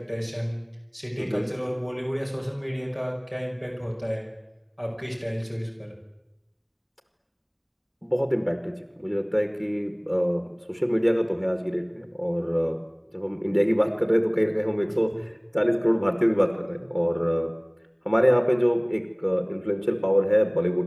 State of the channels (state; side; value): identical; both; correlation 1.00